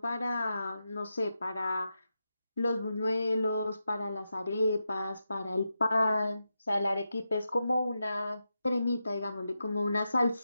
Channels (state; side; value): inverted; both; correlation -0.88